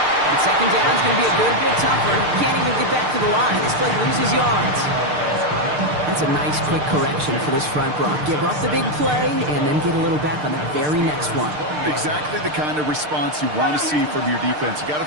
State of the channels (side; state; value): left; late; 6.6 ms